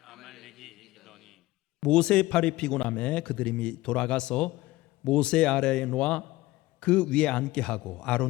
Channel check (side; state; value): right; quieter; 18.5 dB